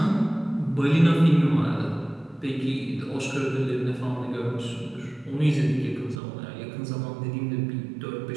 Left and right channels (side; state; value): left; drops out; at 6.2 s